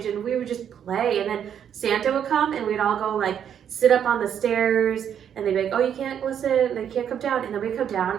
and we would just play. And then Santa would come and we'd all go sit up on the stairs, and they'd be like, oh, you can't listen, and they can't come down. And then we'd come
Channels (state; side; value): quieter; left; 8.8 dB